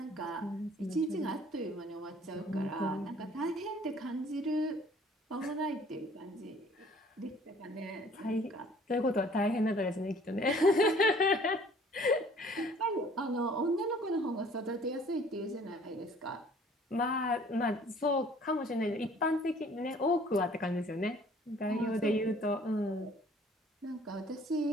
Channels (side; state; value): both; normal; correlation 0.55